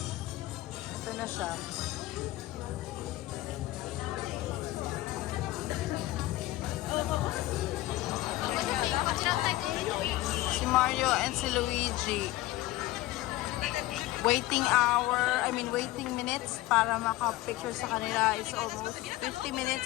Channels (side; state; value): right; quieter; 17.4 dB